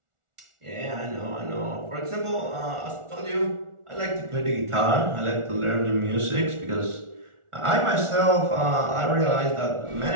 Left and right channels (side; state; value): left; late; 1.4 ms